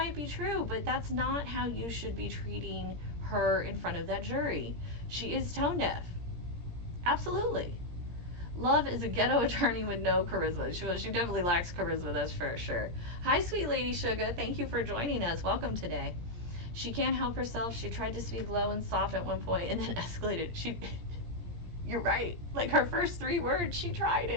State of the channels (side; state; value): left; late; 17 ms